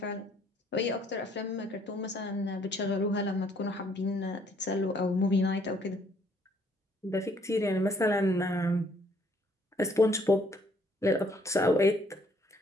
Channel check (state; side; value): normal; both; correlation 0.65